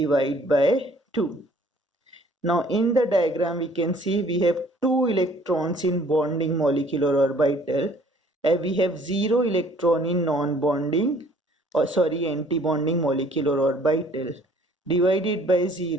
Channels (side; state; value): both; normal; correlation 0.57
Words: by 2. Now in the diagram we can see we have 2 electrons in bonding molecular orbital and we have 0 electron in non-bonding anti-bonding molecular orbital. Divided by